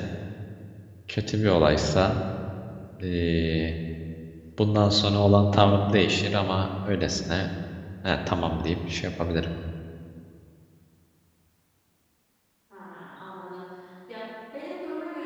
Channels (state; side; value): identical; both; correlation 1.00